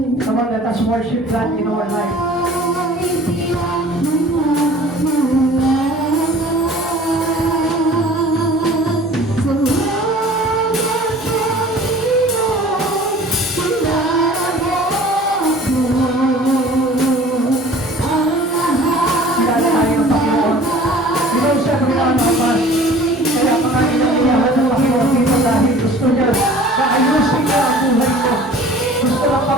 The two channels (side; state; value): both; normal; correlation 0.47